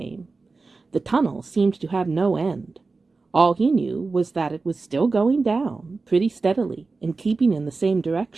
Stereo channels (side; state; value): left; quieter; 3.9 dB